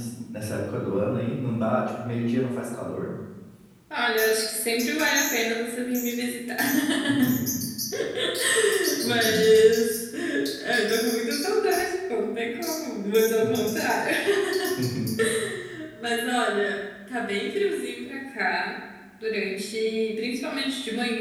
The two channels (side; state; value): both; identical; correlation 1.00